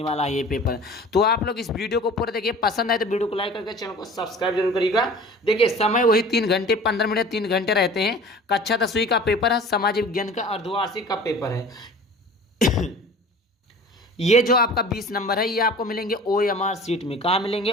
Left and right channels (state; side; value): normal; both; correlation 0.43